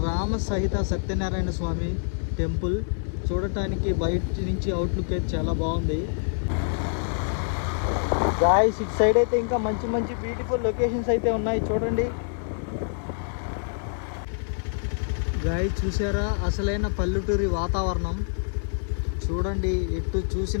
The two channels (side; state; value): right; silent; 61 dB below the other